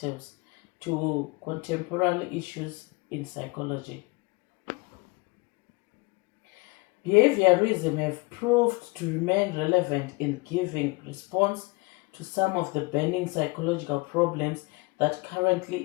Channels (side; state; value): right; quieter; 26.5 dB